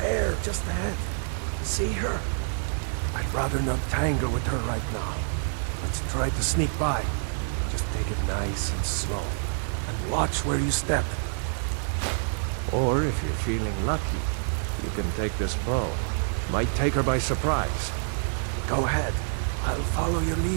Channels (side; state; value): left; silent; digital silence